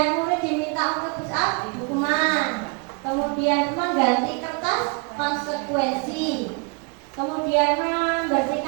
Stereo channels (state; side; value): quieter; left; 33.1 dB